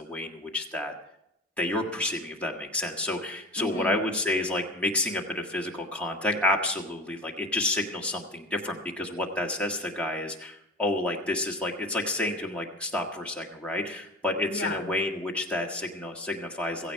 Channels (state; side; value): normal; both; correlation 0.33